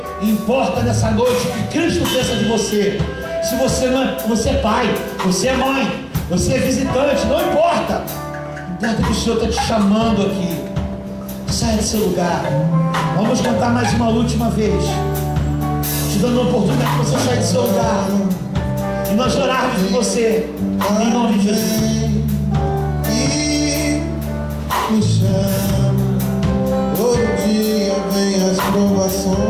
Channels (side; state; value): both; identical; correlation 1.00